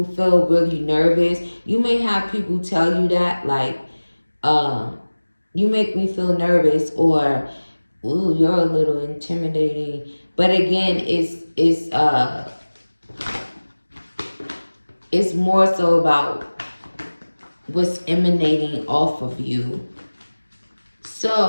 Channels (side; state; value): both; inverted; correlation -1.00